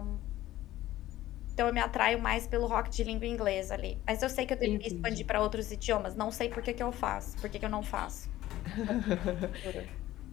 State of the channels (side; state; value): right; quieter; 15.0 dB